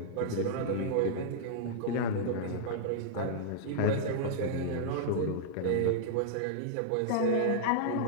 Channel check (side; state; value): both; different; correlation -0.02